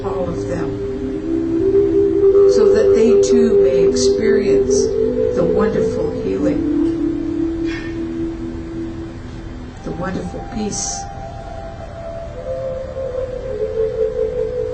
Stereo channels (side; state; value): both; identical; correlation 1.00